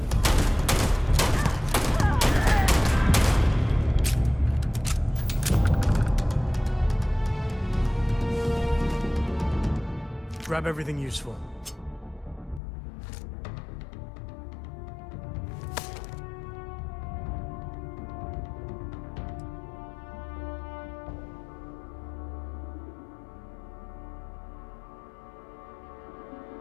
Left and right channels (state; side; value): drops out; right; at 12.6 s